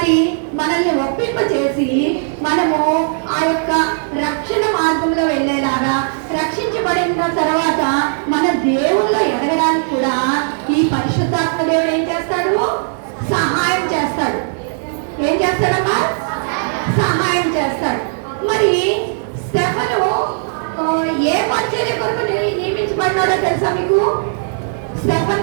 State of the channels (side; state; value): left; silent; 58 dB below the other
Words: మనల్ని ఒప్పింపచేసి మనము ఆ యొక్క రక్షణ మార్గంలో వెళ్ళేలాగా, రక్షించబడిన తర్వాత మన దేవుల్లో ఎదగడానికి కూడా ఈ పరిశుద్ధాత్మ దేవుడు ఏం చేస్తాడు? సహాయం చేస్తాడు. ఏం చేస్తాడమ్మా? సహాయం చేస్తాడు. మరి స్టెఫను ఏ పరిచర్య కొరకు నియమించబడ్డాడో తెలుసా మీకు?